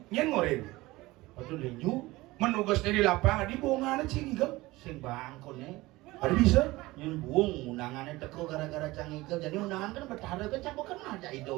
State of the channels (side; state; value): left; quieter; 19.8 dB